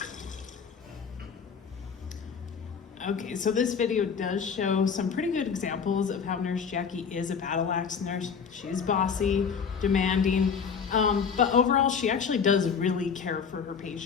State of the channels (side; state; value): right; quieter; 6.3 dB